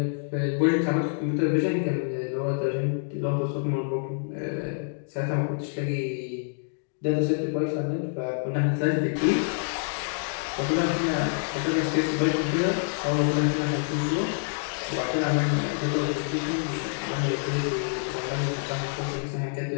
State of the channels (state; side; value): silent; right; digital silence